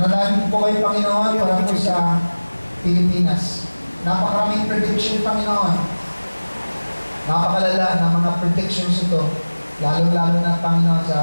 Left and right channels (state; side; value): inverted; both; correlation -1.00